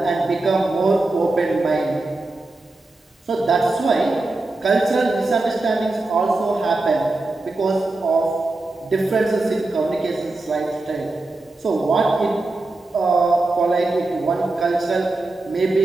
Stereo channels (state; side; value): quieter; left; 3.0 dB